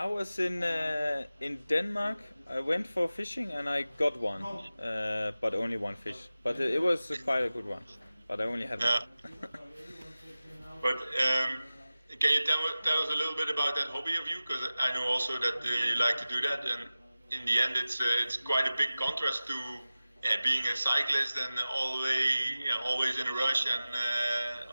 was in Denmark. I went for fishing and I got one, but only one fish. But it was quite a good one. But I only had one. But can you tell us a little bit about that hobby of you? Because I know also that you like to do that, and in the end, it's quite a big contrast to being a cyclist and always in a rush and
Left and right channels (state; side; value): inverted; both; correlation -0.96